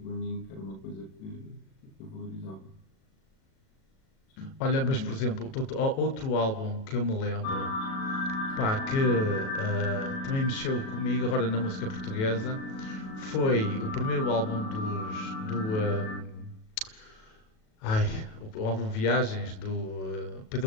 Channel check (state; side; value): late; right; 37 ms